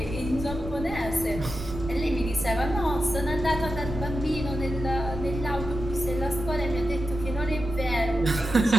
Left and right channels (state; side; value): normal; both; correlation 0.90